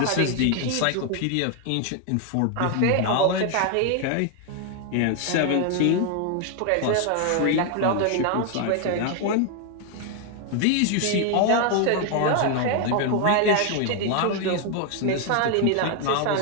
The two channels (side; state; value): both; different; correlation 0.01